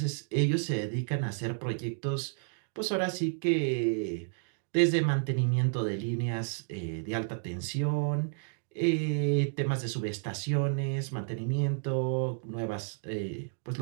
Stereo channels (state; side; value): silent; left; digital silence